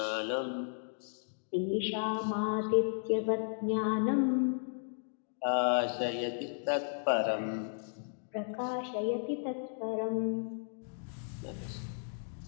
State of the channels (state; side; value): silent; right; digital silence